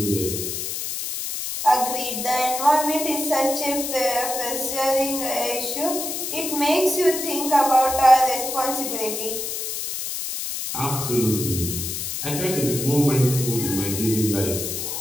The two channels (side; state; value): left; noise; hiss, 4 dB below the sound